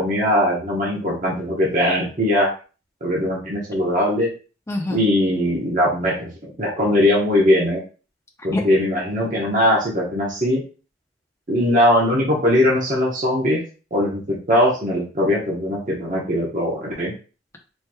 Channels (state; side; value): normal; both; correlation 0.43